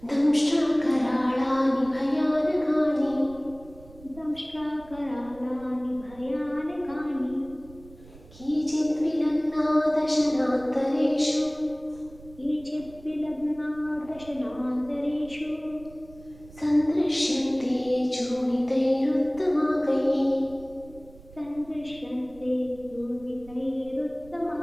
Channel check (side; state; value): right; noise; rumble, 21 dB below the sound